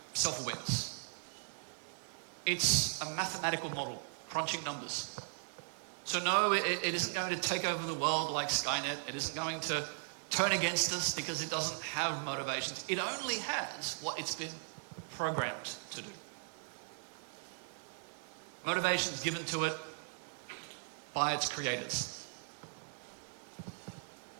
self-awareness. It's a mathematical model, crunching numbers. So no, it isn't going to take over the world like Skynet. It isn't going to turn against us because it doesn't have motivations. It only has what it's been programmed to do. Motivations given to it by its creators.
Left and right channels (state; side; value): silent; left; 52 dB below the other